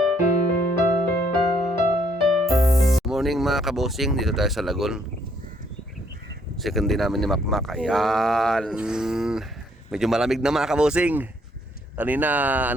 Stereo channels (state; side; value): normal; both; correlation 0.68